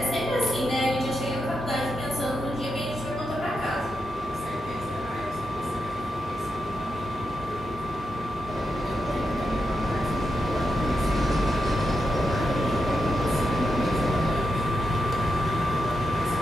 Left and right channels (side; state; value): both; normal; correlation 0.87